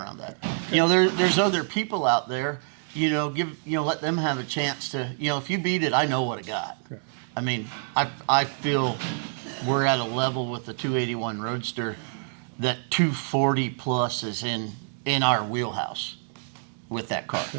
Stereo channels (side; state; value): left; silent; 60 dB below the other